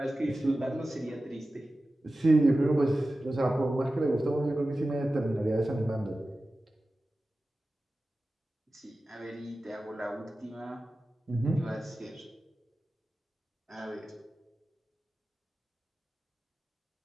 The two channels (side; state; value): both; normal; correlation 0.95